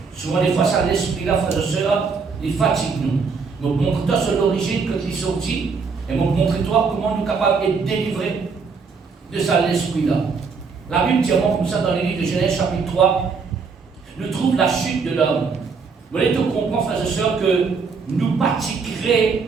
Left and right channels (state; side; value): quieter; left; 5.1 dB